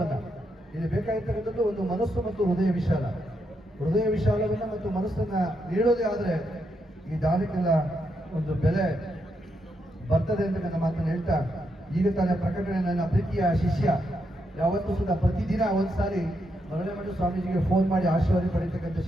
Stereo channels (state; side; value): normal; both; correlation 0.81